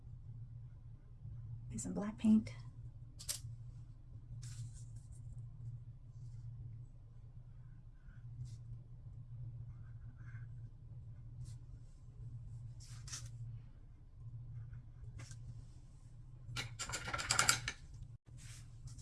with some black paint.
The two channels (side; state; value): both; identical; correlation 1.00